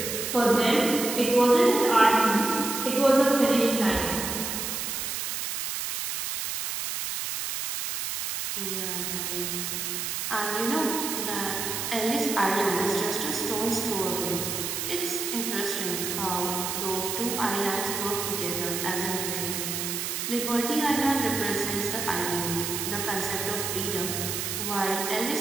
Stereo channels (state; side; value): noise; right; hiss, 3 dB below the sound